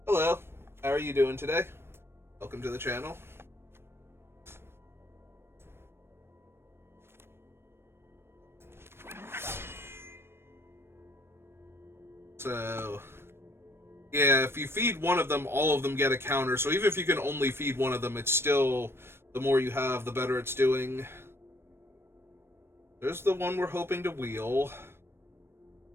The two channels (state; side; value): late; left; 0.12 ms